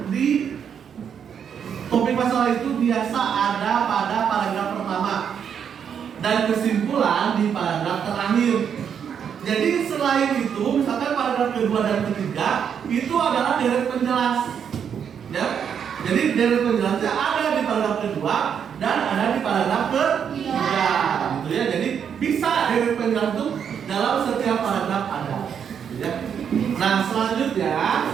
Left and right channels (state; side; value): quieter; left; 7.8 dB